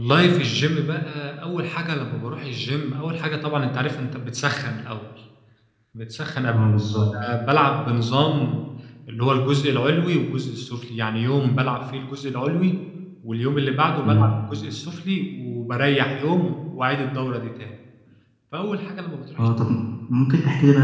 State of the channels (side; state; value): both; identical; correlation 1.00